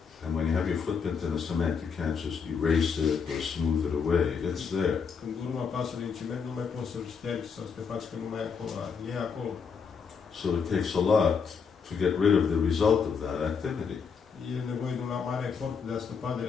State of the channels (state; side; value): quieter; right; 6.0 dB